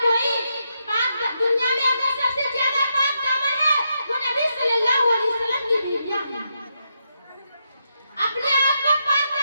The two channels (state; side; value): inverted; both; correlation -0.83